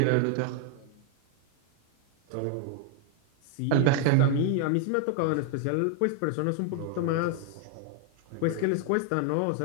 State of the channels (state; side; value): different; both; correlation 0.00